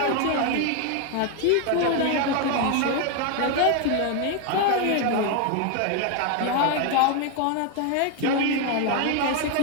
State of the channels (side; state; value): both; different; correlation 0.01